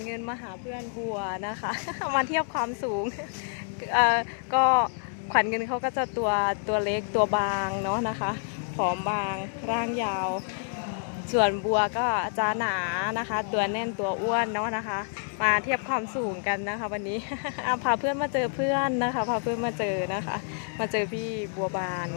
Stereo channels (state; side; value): silent; right; digital silence